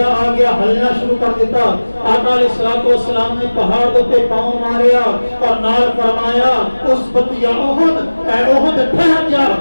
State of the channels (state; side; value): inverted; both; correlation -1.00